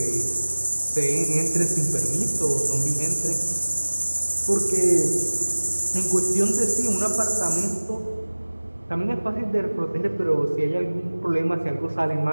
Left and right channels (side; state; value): both; inverted; correlation -1.00